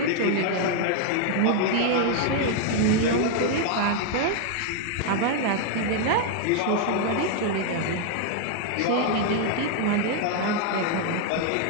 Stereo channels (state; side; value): different; both; correlation 0.00